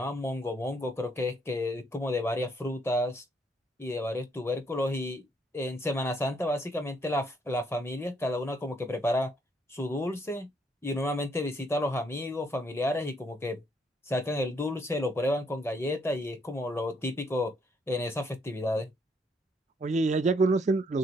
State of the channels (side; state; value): both; normal; correlation 0.70